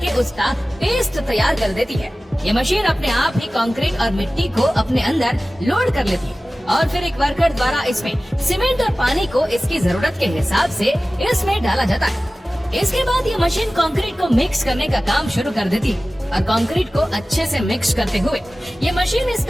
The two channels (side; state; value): both; normal; correlation 0.97